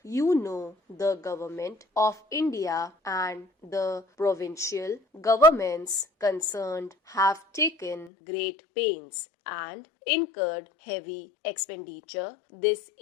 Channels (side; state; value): right; drops out; at 8.1 s